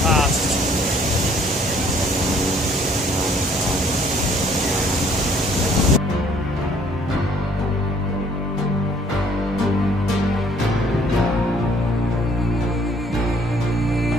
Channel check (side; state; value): both; normal; correlation 0.60